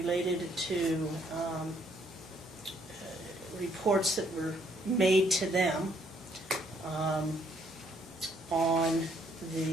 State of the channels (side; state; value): both; normal; correlation 0.68